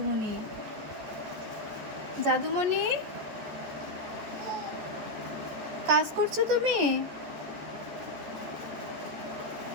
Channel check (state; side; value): late; left; 14 ms